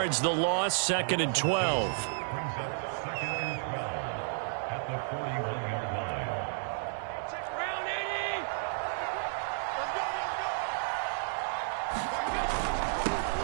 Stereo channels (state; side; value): silent; left; digital silence